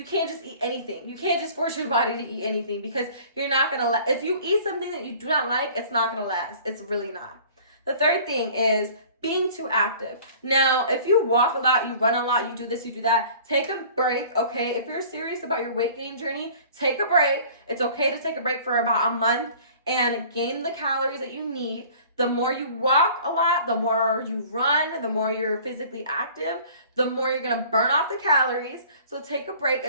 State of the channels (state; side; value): inverted; both; correlation -0.48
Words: can't just eat anything. You can't just force your body to eat anything, because you're not going to if you eat something that you do not like, it's not going to last. It's really not. The third thing is being too active. Now, if you walk a lot, you run a lot, you do this, you do that, take a break, okay? If you're serious about your weight gain journey, take a break. It's okay to take a break for about a month and gain the calories that you need. The more you walk a lot, the more you run, the more you're physically active, the more you're going to burn off the calories. So take a break.